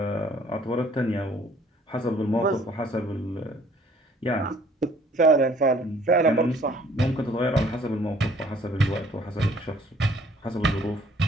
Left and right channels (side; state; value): both; normal; correlation 0.58